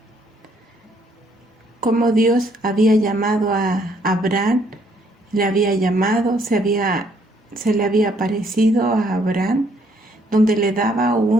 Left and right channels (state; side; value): normal; both; correlation 0.67